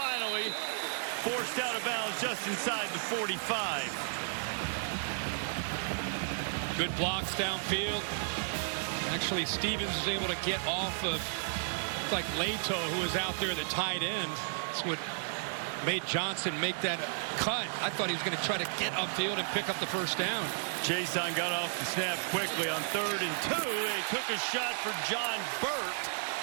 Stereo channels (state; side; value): silent; left; digital silence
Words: forced out of bounds just inside the 45. Good blocks downfield. Actually, Stevens was able to get off of, like Leto, who was out there at the tight end. That's what made Johnson make that cut. I thought he was going to try to get upfield and pick up the first down. Chason got off the snap quickly on 3rd and 2. They took a shot for John Burt.